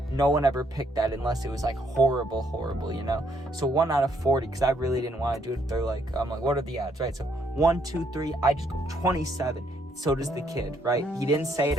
no one ever picked that unless it was like horrible, you know? So 1 out of 40, because I really didn't want to do it. They're like, I'm like, what are the odds, right? So 1, 2, 3, I just go 27. So does the kid, right? He didn't say it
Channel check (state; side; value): normal; both; correlation 0.71